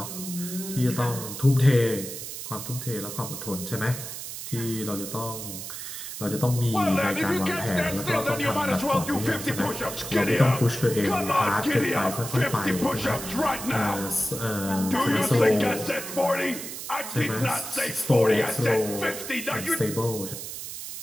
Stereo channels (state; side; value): noise; right; hiss, 8 dB below the sound